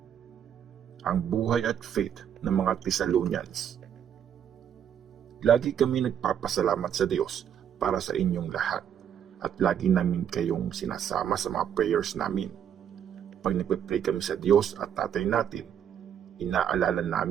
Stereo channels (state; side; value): quieter; left; 9.0 dB